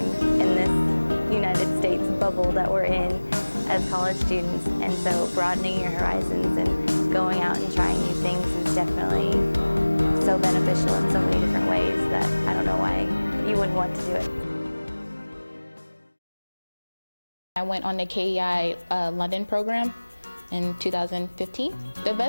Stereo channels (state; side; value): inverted; both; correlation -1.00